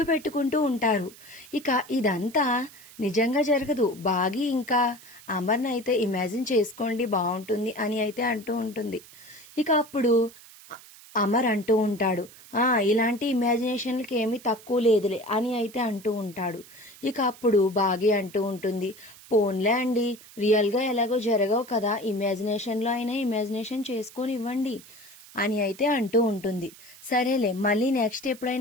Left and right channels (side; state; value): right; noise; hiss, 21 dB below the sound